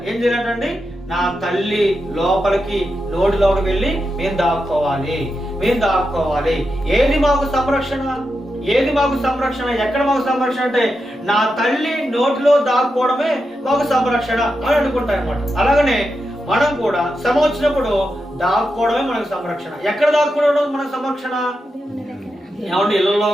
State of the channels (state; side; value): normal; both; correlation 0.87